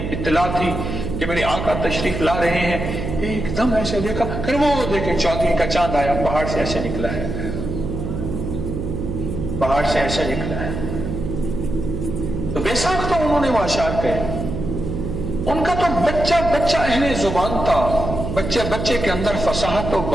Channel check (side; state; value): right; noise; hum, 4 dB below the sound